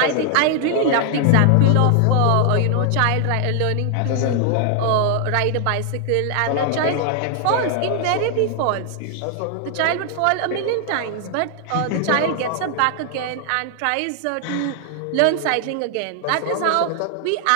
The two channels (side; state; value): both; different; correlation 0.00